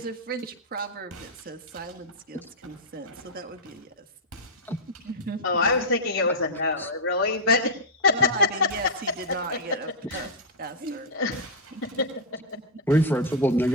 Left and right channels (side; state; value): both; normal; correlation -0.04